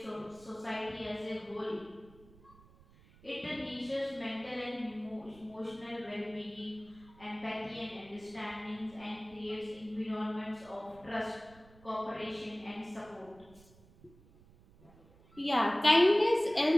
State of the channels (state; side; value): noise; right; rumble, 25 dB below the sound